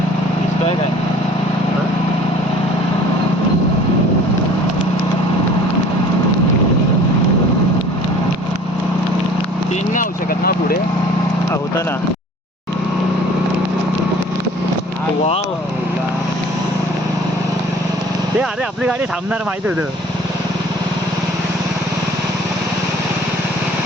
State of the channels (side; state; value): both; normal; correlation 0.49